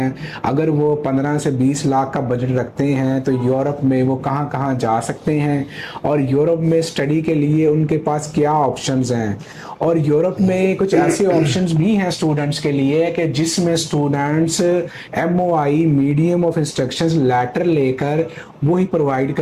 अगर वो 15 से 20 लाख का बजट रखते हैं तो यूरोप में वो कहाँ कहाँ जा सकते हैं और यूरोप में स्टडी के लिए उनके पास क्या ऑप्शंस हैं। और यूरोप में कुछ ऐसे ऑप्शंस भी हैं स्टूडेंट्स के लिए कि जिसमें students MOI medium of instructions letter लेकर वो ही प्रोवाइड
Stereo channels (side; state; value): both; identical; correlation 1.00